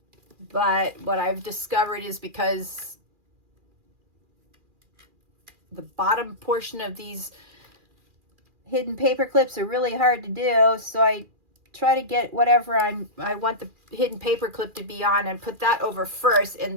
But what I've discovered is because the bottom portion of these hidden paper clips are really hard to do, so I try to get whatever I want the hidden paper clip to be on and put that over first,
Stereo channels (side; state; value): left; late; 2.4 ms